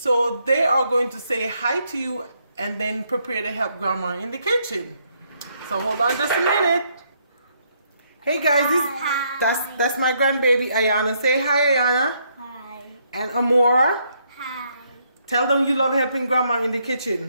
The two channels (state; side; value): inverted; both; correlation -0.73